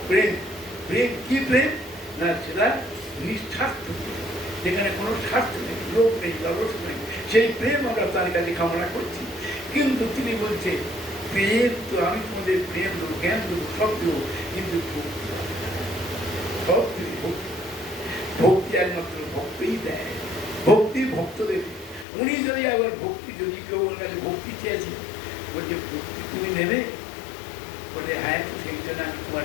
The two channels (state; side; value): drops out; right; at 22.1 s